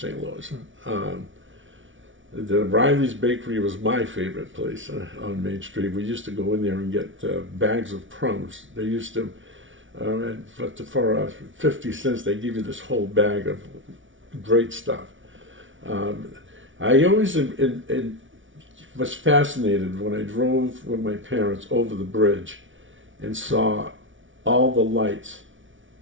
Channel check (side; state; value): left; late; 0.56 ms